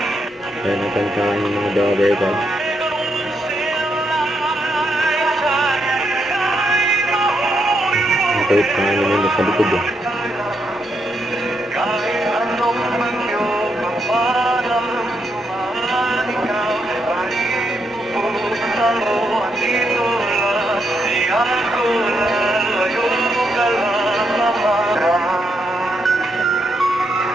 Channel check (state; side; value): normal; both; correlation 0.80